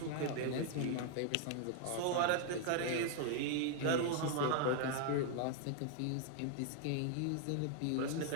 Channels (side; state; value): both; different; correlation 0.00